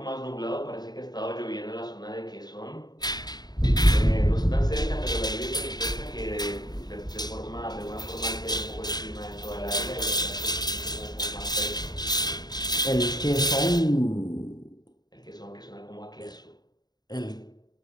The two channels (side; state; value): right; late; 0.20 ms